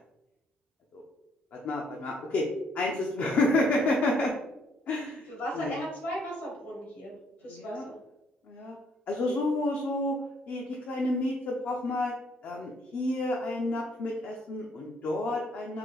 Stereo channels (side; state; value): both; normal; correlation 0.68